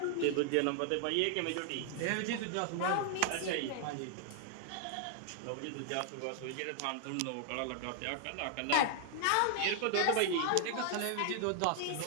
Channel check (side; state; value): both; different; correlation 0.00